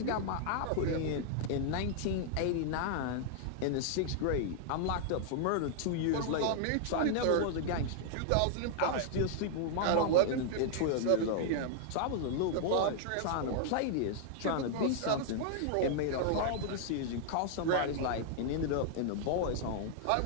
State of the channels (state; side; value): different; both; correlation -0.01